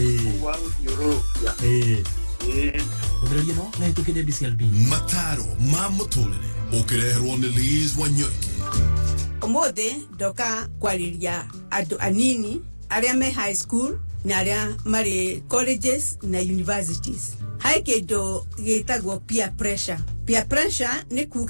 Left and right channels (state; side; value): inverted; both; correlation -1.00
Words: wa guthiururukia Ndio no na tukide BCLB mataro ma muturire ukireherwo ni Liz Wanyoike. Umuthi ndoka kwariria andu anini aria me high school na aria mari colleges na universities. Hai kindu gitagwo peer pressure. Peer pressure ni